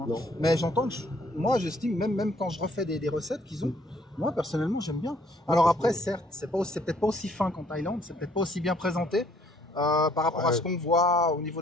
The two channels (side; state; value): both; normal; correlation 0.63